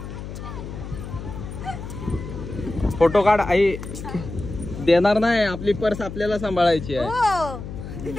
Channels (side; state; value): left; noise; hum, 9 dB below the sound